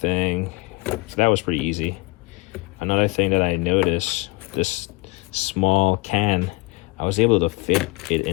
so that was pretty easy. Another thing that I noticed, this small can, I was able to fit it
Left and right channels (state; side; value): quieter; right; 24.4 dB